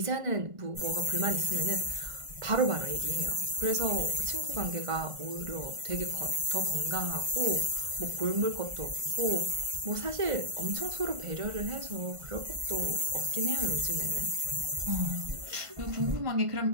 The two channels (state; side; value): late; left; 1.5 ms